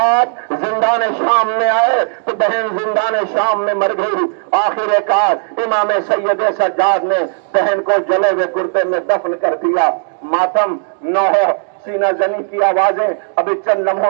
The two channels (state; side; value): silent; left; digital silence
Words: زندان شام میں آئے تو بہن زندان شام میں مر گئی۔ آخر کار امام سید سجاد نے بہن کو جلے ہوئے کرتے میں دفن کر دیا۔ ماتم نوح سینہ زنی کی آوازیں ابھی چند